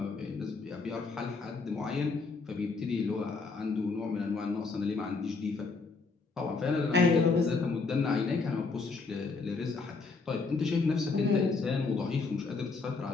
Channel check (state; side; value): quieter; right; 4.3 dB